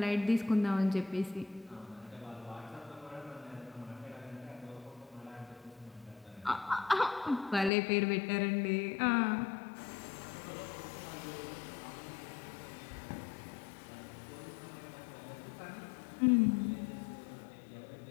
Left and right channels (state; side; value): drops out; right; at 7.7 s